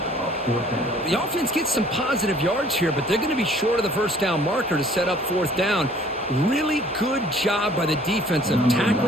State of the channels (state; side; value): normal; both; correlation 0.55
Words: The offense gets some positive yards here, but they're going to be short of the first down marker to set up fourth down. Really good job by the defense of